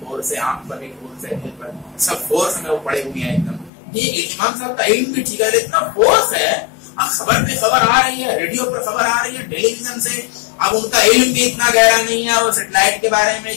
ہے، آنکھ پر بھی فورس ہے، دل پر سب فورس میں وہ پڑے ہوئے ہیں ایک دم. یہ امام صاحب کا علم بھی ٹھیک ہے، اتنا فورس ہے. اب خبر پہ خبر آ رہی ہے، ریڈیو پر خبر آ رہی ہے، ٹیلی ویژن سے. اب ان کا علم بھی اتنا گہرا نہیں ہے، وہ سیٹلائٹ کے بارے میں،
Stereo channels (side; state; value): right; drops out; at 3.7 s